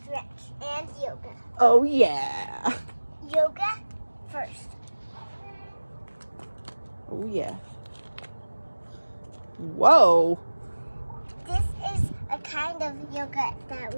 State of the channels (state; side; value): inverted; both; correlation -1.00